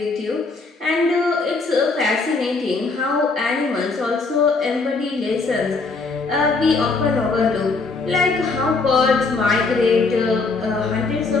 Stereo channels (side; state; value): right; quieter; 4.0 dB